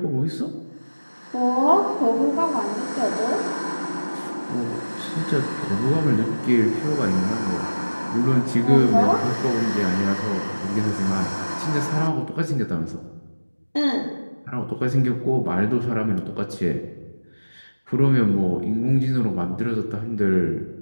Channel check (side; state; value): both; inverted; correlation -1.00